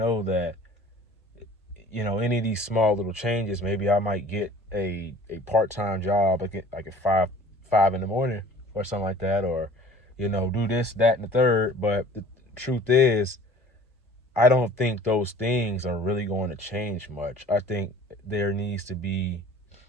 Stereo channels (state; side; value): normal; both; correlation 0.48